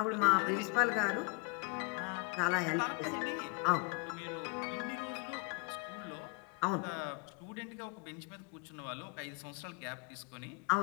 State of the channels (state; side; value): quieter; right; 32.3 dB